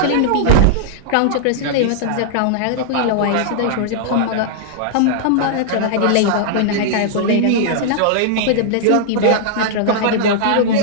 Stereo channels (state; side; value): different; both; correlation -0.01